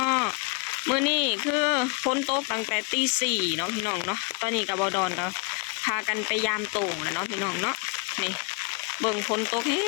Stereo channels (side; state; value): right; quieter; 33.7 dB